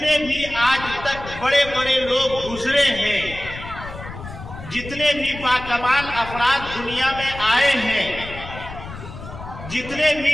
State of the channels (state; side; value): noise; left; rumble, 12 dB below the sound